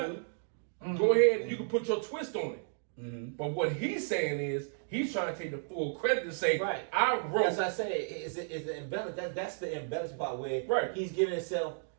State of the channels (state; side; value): silent; left; digital silence